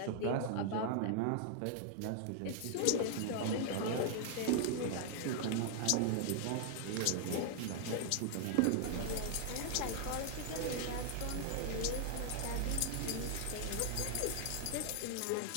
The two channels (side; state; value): both; different; correlation 0.00